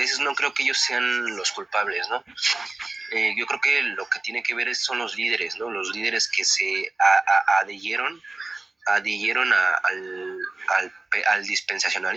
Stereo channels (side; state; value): left; quieter; 3.2 dB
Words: no creo que ellos sean los culpables, ¿no? Yo creo que lo que tiene que ver son los líderes, ¿no? Los líderes que se adhirieron al